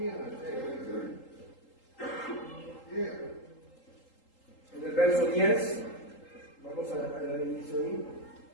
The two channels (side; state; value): right; late; 3.8 ms